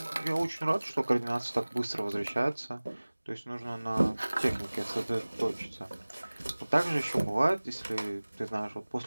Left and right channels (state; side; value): inverted; both; correlation -1.00